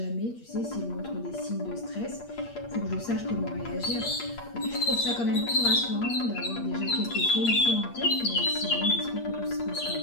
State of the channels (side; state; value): right; late; 8.5 ms